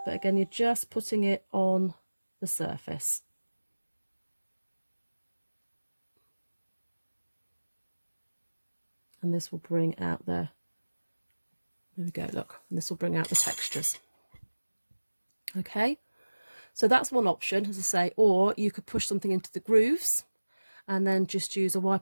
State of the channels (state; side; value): inverted; both; correlation -1.00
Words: but again you're just putting it on the surface. And this will bring out the There we go, look, and this will bring out the textures. Okay, so that's one option, as I say, or you could push something into the grooves and then just use a